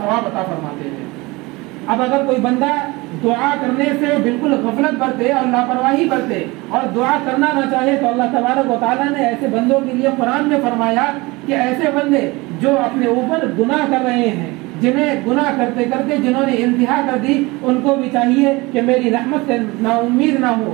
عطا فرماتے ہیں. اب اگر کوئی بندہ دعا کرنے سے بالکل غفلت برتے اور لاپرواہی برتے اور دعا کرنا نہ چاہے تو اللہ تبارک و تعالیٰ نے ایسے بندوں کے لیے قرآن میں فرمایا کہ ایسے بندے جو اپنے اوپر گناہ کر رہے ہیں، جنہیں گناہ کرتے کرتے جنہوں نے انتہا کر دی، ان کو بھی چاہیے کہ میری رحمت سے نا امید نہ ہو.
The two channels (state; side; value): quieter; left; 23.2 dB